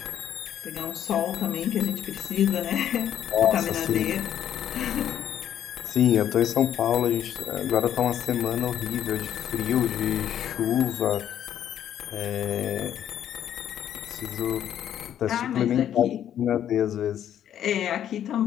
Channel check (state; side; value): quieter; right; 10.3 dB